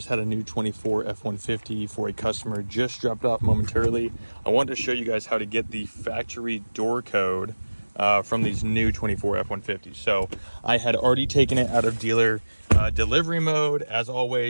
had a new 24 F-150 for a customer, just dropped off momentarily. I wanted to show you guys how to get the factory door code from these new 24 F-150s. So I had already taken it out of dealer delivery mode. As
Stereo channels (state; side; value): inverted; both; correlation -1.00